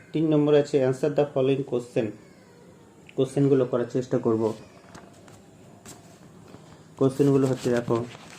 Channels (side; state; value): both; identical; correlation 1.00